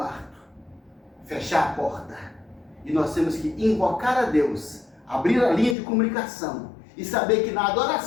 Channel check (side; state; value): right; drops out; at 5.8 s